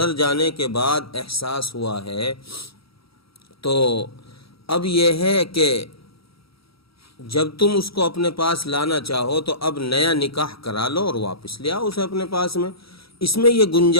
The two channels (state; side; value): late; right; 0.76 ms